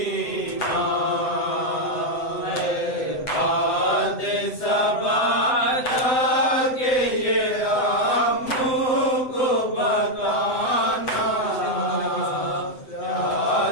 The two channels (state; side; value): late; right; 7.8 ms